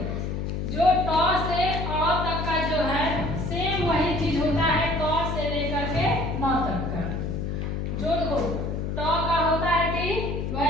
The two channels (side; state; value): left; noise; hum, 2 dB below the sound